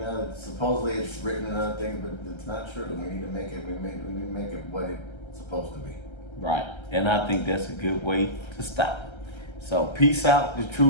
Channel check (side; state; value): right; late; 1.3 ms